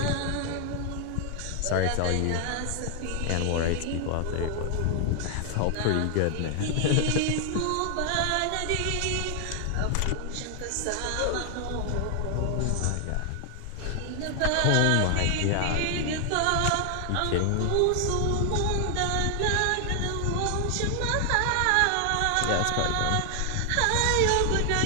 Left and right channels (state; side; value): different; both; correlation 0.00